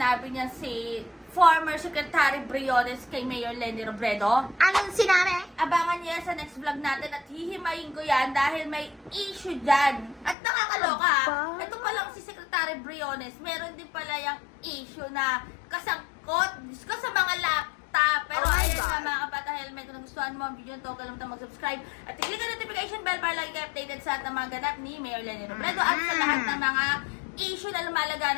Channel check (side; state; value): right; drops out; at 10.4 s